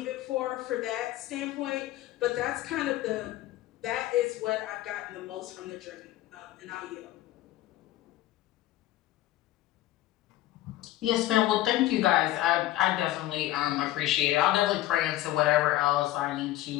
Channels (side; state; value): right; quieter; 15.0 dB